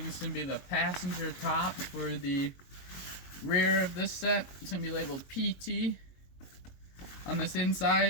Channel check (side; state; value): right; late; 22 ms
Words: is going to be the passenger top for the rear of this set. It's going to be labeled PT on this